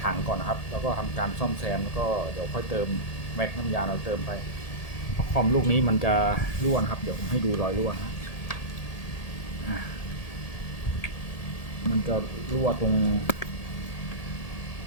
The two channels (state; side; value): late; right; 1.8 ms